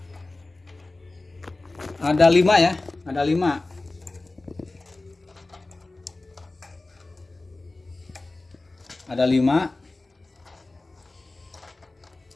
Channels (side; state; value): right; quieter; 3.1 dB